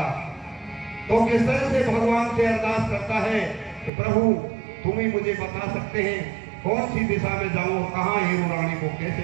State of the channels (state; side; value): drops out; left; at 3.9 s